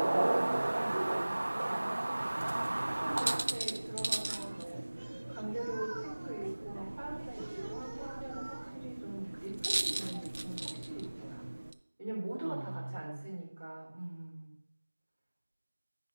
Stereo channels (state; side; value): inverted; both; correlation -1.00